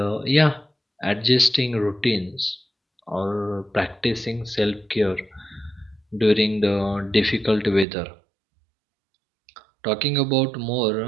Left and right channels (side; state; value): left; drops out; at 7.9 s